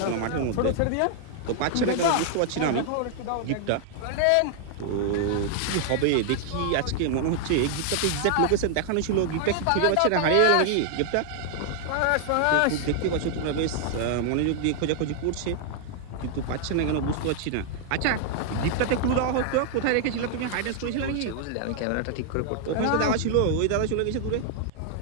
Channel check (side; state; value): both; different; correlation 0.00